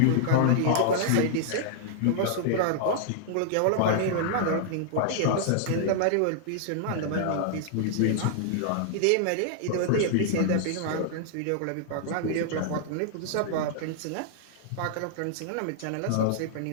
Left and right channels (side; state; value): both; different; correlation -0.01